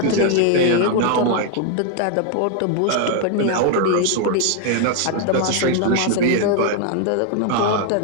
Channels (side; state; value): both; different; correlation 0.00